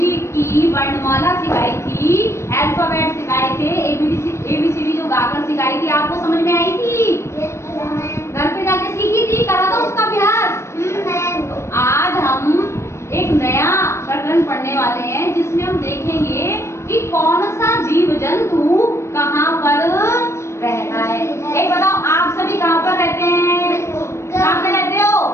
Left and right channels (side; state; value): right; late; 0.13 ms